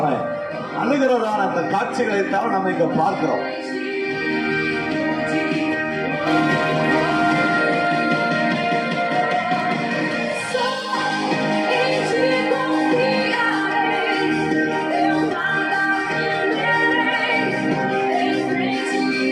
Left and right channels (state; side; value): identical; both; correlation 1.00